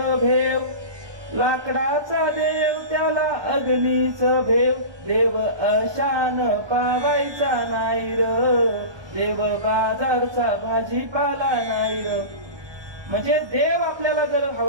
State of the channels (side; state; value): left; late; 1.2 ms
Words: भेव, लाकडाचा देव त्याला अग्नीचं भेव, देव अशान पावायचा नाही र, देव बाजारचा भाजीपाला नाही र. म्हणजे देव आपल्याला जर